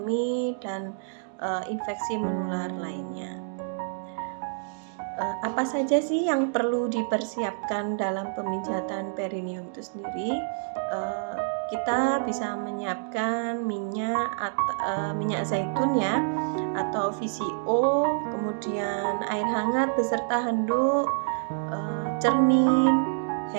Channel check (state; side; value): silent; left; digital silence